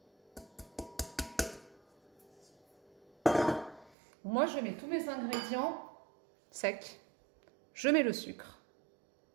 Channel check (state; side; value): drops out; left; at 3.9 s